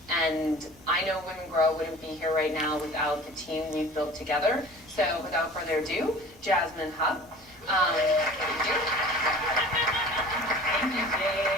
And I know Women Grow wouldn't be here right now without the team we've built together. So without further ado, Jasmine Hubb. Thank you. Thank you,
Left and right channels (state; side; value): normal; both; correlation 0.43